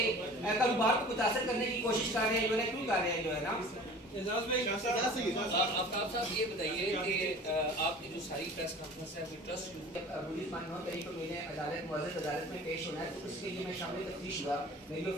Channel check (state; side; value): normal; both; correlation 0.43